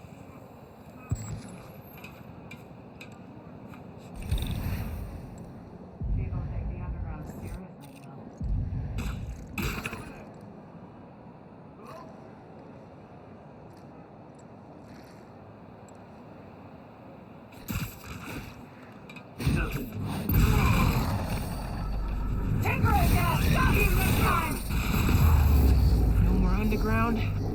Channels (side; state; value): both; identical; correlation 1.00